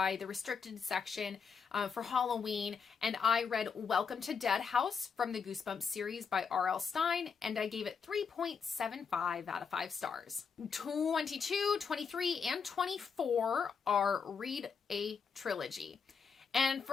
the restricted section for Halloween, and I read Welcome to Dead House from the Goosebumps series by R.L. Stine, and I gave it 3.75 out of 5 stars. 22, 23, and 24 are read a trilogy. And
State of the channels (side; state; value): right; quieter; 6.0 dB